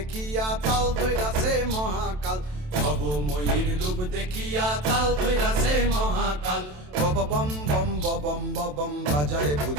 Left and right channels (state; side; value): late; left; 27 ms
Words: তাল ধইরাছে মহাকাল, ভবময়ীর রূপ দেখিয়া তাল ধইরাছে মহাকাল। Bob bomb bomb bomb bomb বাজায়